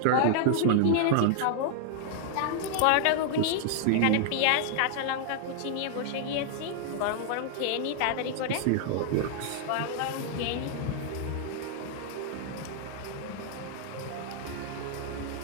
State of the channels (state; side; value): different; both; correlation -0.01